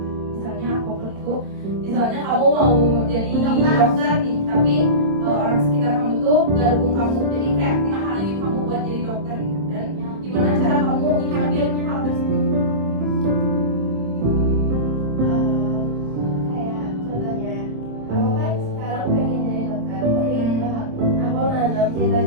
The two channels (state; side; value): late; left; 26 ms